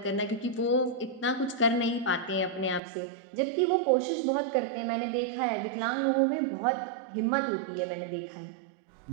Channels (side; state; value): left; drops out; at 2.8 s